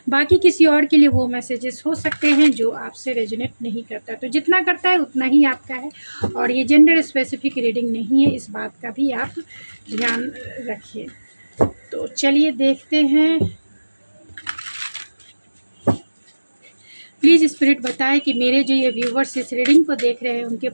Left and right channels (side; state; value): both; inverted; correlation -1.00